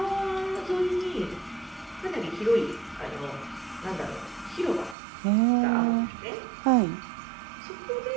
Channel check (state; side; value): drops out; left; at 5.0 s